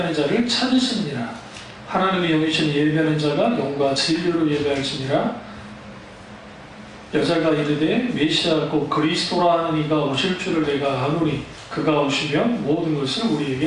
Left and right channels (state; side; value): identical; both; correlation 1.00